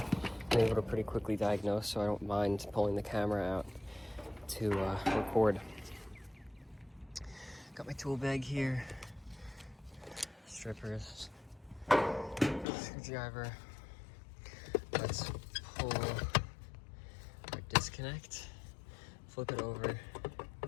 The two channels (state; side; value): drops out; right; at 12.7 s